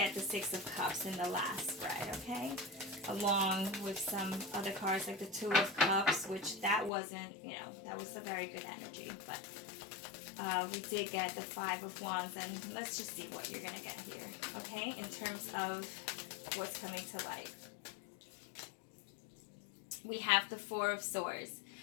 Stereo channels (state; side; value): drops out; right; at 6.9 s